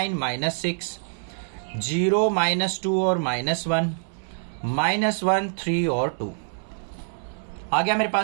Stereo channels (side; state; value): left; silent; 58 dB below the other